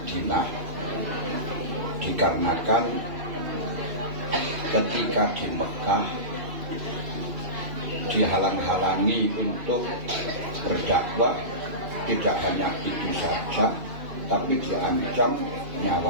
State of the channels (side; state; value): left; late; 2.6 ms